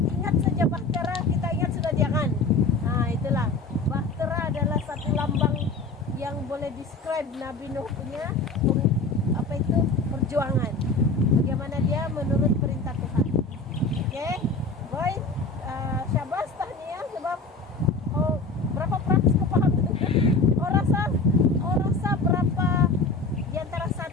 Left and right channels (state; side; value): quieter; right; 3.4 dB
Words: saja bahtera, kita ingat sudah dia kan? Nah, itulah. Bahtera adalah satu lambang yang boleh describe Nabi Nuh punya perjuangan. Bagaimana dia menurut perintah Tuhan. Oke, boy, syabas tahniah sebab berapa praksi kau paham? Rasa berapa di antara